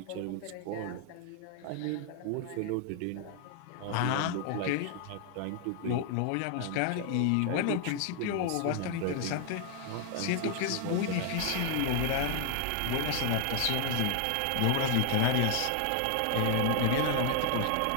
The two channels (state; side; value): different; both; correlation 0.00